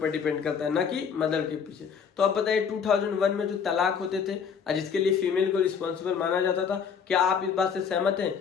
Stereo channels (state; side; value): quieter; right; 6.7 dB